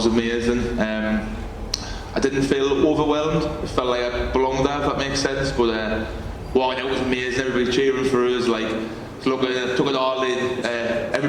amazing. I didn't feel overwhelmed. It felt like I belonged there, if that makes sense. But walking out was amazing. Everybody cheering for us. Like, look, took it all in.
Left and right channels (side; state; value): both; identical; correlation 1.00